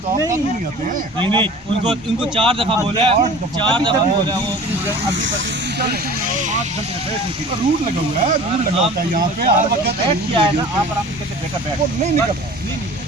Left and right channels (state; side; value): normal; both; correlation 0.43